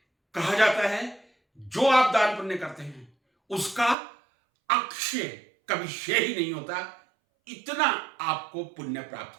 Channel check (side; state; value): left; drops out; at 4.0 s